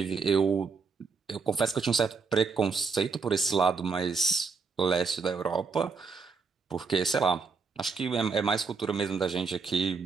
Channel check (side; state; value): left; quieter; 5.0 dB